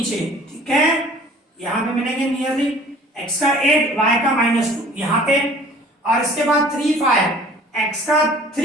ठीक है, यहां पे मिलेंगे नियरली x का 8 y का -2 यहां पे, और इसके बाद 3 5 x का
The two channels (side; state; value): both; normal; correlation 0.50